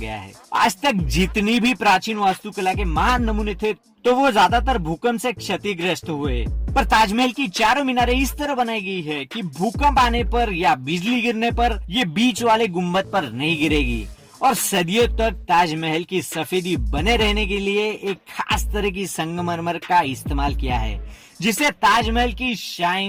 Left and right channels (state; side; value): identical; both; correlation 1.00